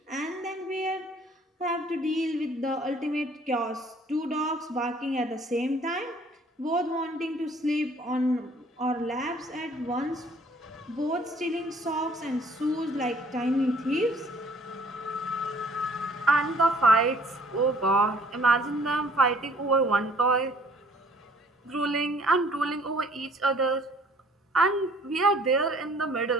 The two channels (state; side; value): normal; both; correlation 0.58